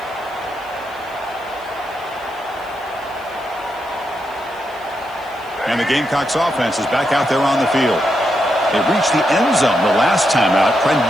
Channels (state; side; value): noise; left; hiss, 27 dB below the sound